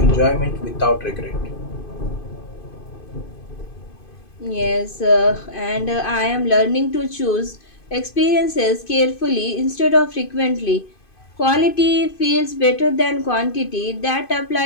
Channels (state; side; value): late; right; 2.5 ms